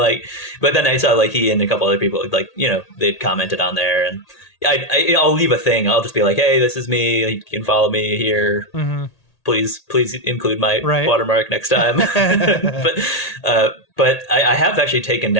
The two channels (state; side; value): late; right; 1.8 ms